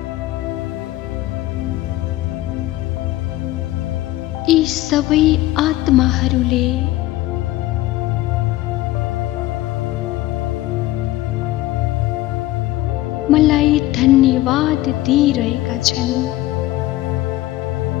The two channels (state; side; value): quieter; right; 16.3 dB